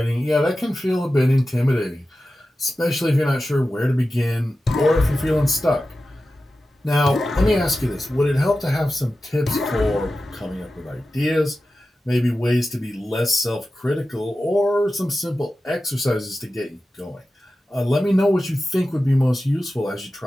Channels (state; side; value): normal; both; correlation 0.93